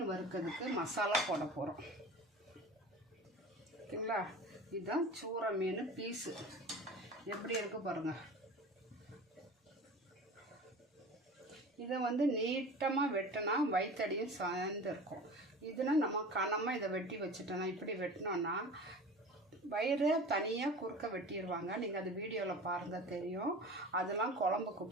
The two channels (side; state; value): both; normal; correlation 0.36